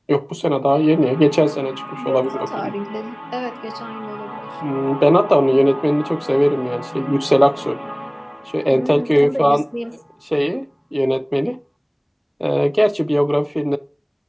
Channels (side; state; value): both; identical; correlation 1.00